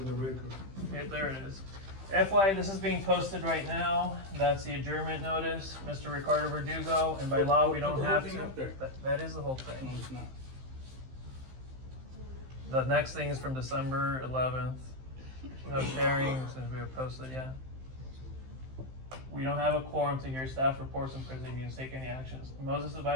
record. Okay, there it is. FYI, this is being posted right now. That's the adjournment notice, Mr. Ricardo Verdugo, and by law, we don't Put the have whole to. thing up there. That is the whole No, thing. it's not. The next thing is from December 11th. No sharing since we were posted yet. We don't have a quorum to hear staff reports and proceedings, take any actions. Moses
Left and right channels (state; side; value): late; left; 15 ms